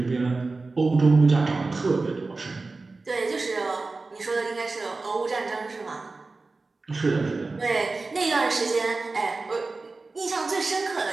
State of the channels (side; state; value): left; quieter; 3.6 dB